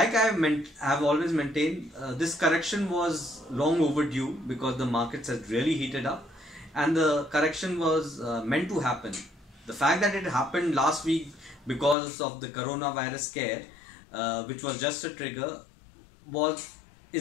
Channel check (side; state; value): right; drops out; at 12.0 s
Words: have always maintained, this correction was long overdue because the markets had really heated up, and the correction was meant to happen. The fact that it happened last week because of the coronavirus scare, which was just a trigger, was